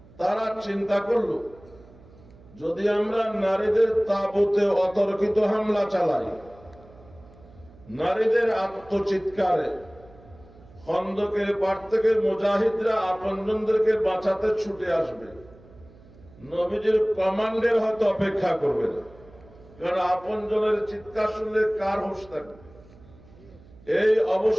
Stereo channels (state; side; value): noise; right; hum, 24 dB below the sound